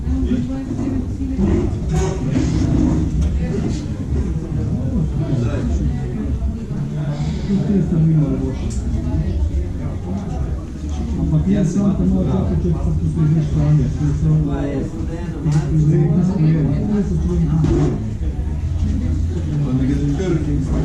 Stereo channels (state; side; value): identical; both; correlation 1.00